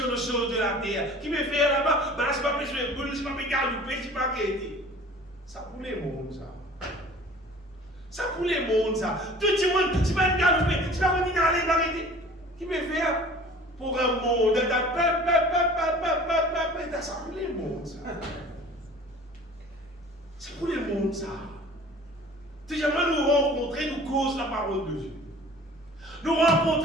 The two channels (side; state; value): both; normal; correlation 0.46